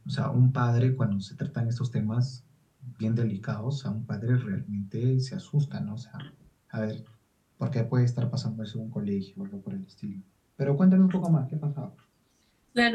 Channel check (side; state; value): both; identical; correlation 1.00